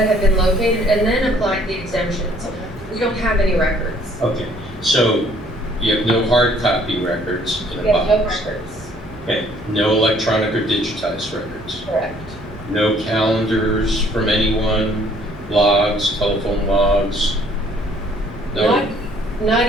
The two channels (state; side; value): normal; both; correlation 0.60